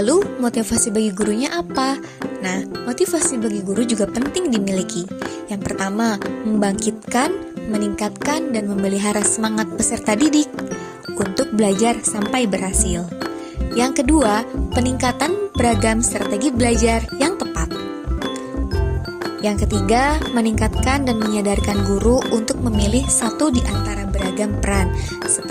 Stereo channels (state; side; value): identical; both; correlation 1.00